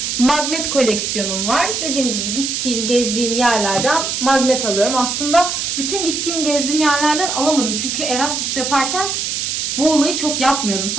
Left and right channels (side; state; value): right; noise; hiss, 2 dB below the sound